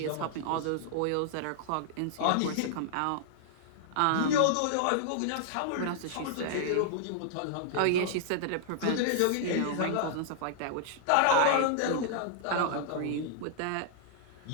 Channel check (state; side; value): different; both; correlation -0.01